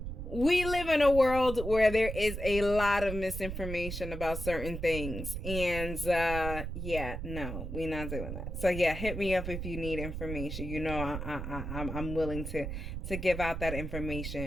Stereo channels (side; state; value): right; noise; rumble, 6 dB below the sound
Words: we live in a world where there is a lot of misinformation about certain things. And yeah, no, we're not doing that. So yeah, hit me up if you need information. I'm willing to give out that